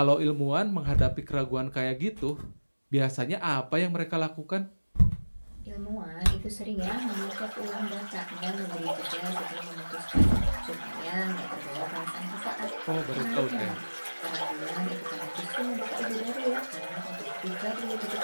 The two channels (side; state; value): both; inverted; correlation -1.00